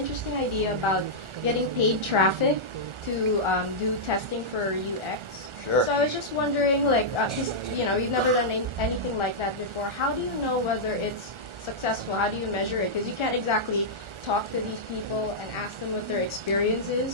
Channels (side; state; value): left; late; 1.4 ms